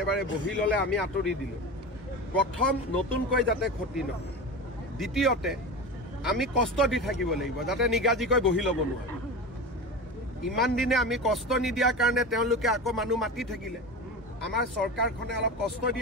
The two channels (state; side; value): normal; both; correlation 0.27